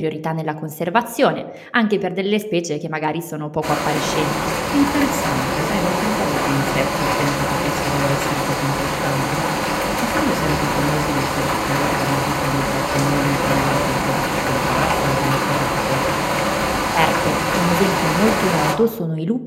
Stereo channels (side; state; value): both; identical; correlation 1.00